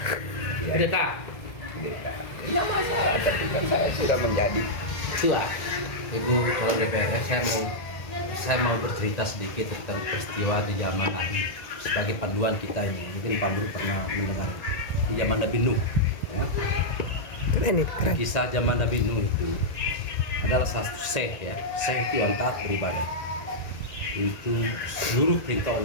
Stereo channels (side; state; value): right; late; 1.9 ms